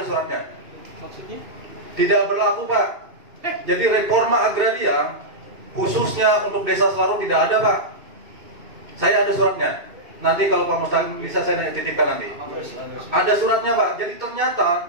suratnya. Maksudnya? Tidak berlaku, Pak. Jadi reforma agraria khususnya untuk desa Selarong tidak ada, Pak. Saya ada suratnya. Nanti kalau Pak Mustaqim bisa saya titipkan nanti. Ada suratnya, Pak. Jadi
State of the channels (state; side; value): late; left; 2.6 ms